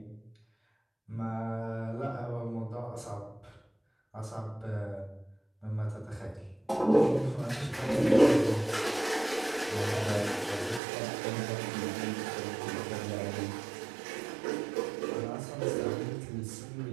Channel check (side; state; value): left; drops out; at 10.8 s